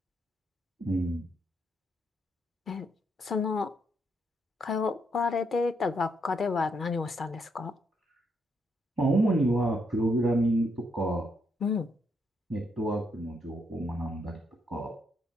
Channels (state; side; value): normal; both; correlation 0.77